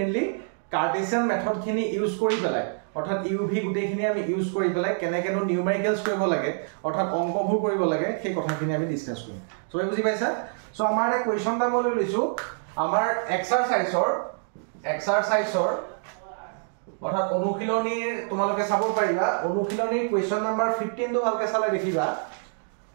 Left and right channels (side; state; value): left; silent; digital silence